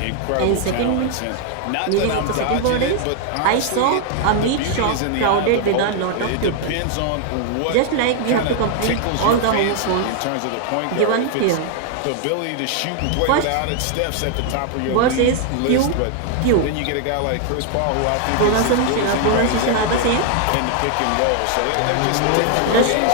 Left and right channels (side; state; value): both; different; correlation 0.00